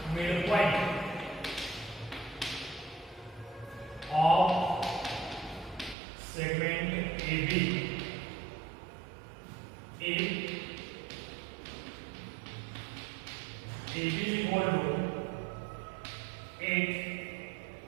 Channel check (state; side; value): drops out; left; at 6.0 s